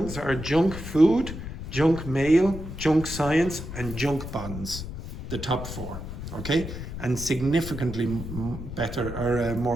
are junk food, junk mail, junk science, and junk bonds. The top four. Okay, and significantly better or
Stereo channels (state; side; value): noise; left; rumble, 8 dB below the sound